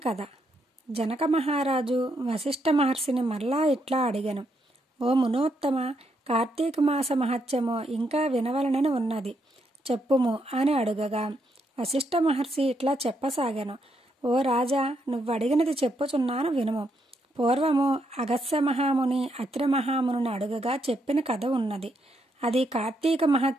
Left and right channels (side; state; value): both; normal; correlation 0.77